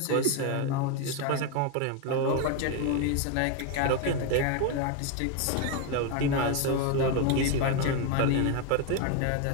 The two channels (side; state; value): both; different; correlation 0.02